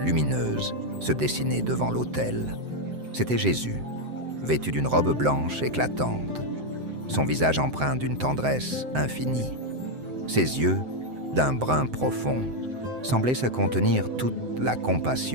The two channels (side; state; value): left; late; 7.8 ms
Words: lumineuse se dessiner devant l'autel. C'était Jésus, vêtu d'une robe blanche éclatante, son visage empreint d'une tendresse infinie. Ses yeux, d'un brun profond, semblaient se contenir toute la